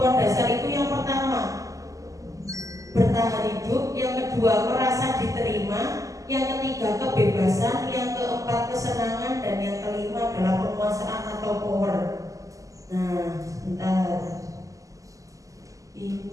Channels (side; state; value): left; late; 0.16 ms